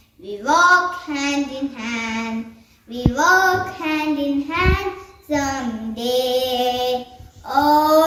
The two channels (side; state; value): both; identical; correlation 1.00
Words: We walk hand in hand. We walk hand in hand someday.